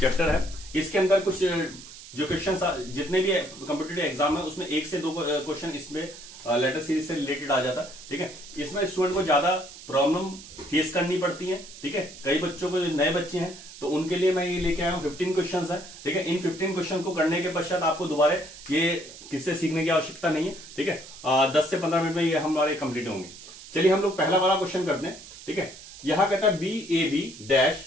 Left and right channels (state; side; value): noise; right; hiss, 16 dB below the sound